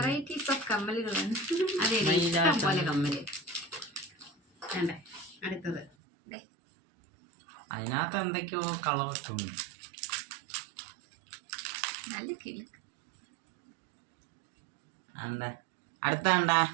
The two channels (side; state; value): left; drops out; at 5.9 s